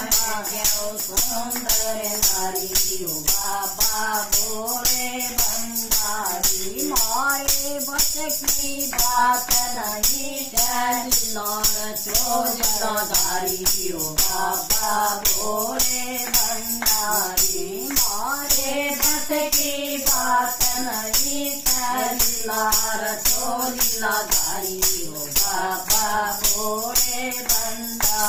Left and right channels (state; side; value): identical; both; correlation 1.00